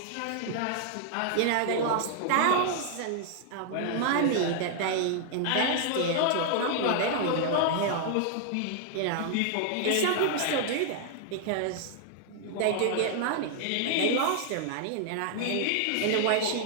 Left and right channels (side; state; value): both; different; correlation -0.01